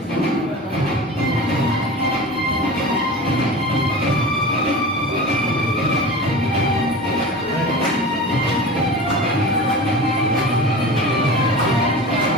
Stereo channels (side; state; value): both; normal; correlation 0.33